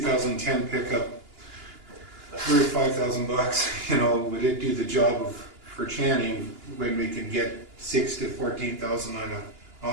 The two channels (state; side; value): late; left; 2.9 ms